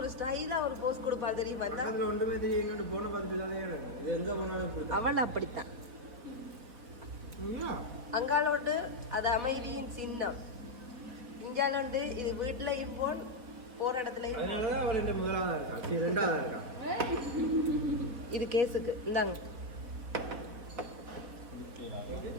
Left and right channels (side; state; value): left; late; 4.1 ms